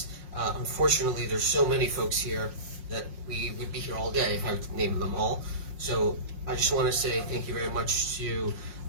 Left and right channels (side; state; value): left; late; 5.5 ms